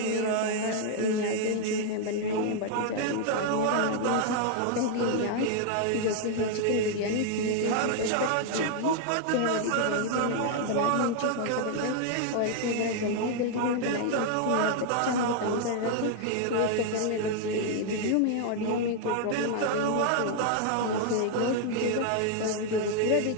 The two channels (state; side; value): different; both; correlation 0.00